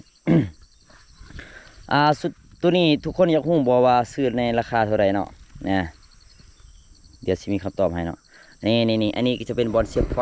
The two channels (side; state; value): both; identical; correlation 1.00